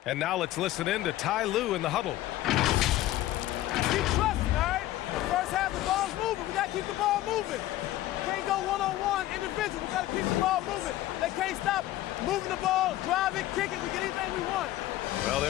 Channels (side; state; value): right; quieter; 15.2 dB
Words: And now let's listen in to Ty Lue in the huddle. Keep trusting, all right? First half, the ball's moving. We got to keep the ball moving. Can't go one-on-one individual. We got to keep the ball moving. They can't stop moving the ball, drive it, kick it. We get anything we want. Well,